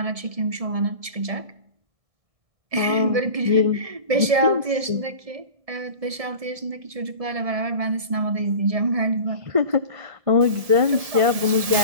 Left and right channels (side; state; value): left; late; 1.7 ms